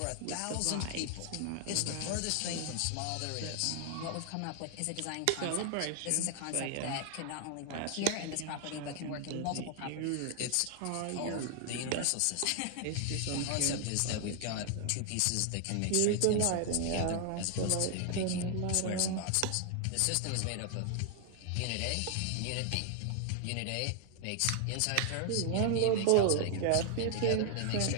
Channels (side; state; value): both; different; correlation 0.00